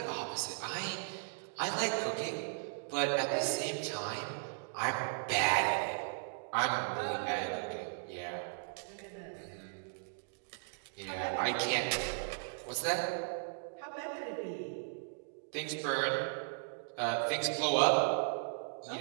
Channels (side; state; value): left; silent; digital silence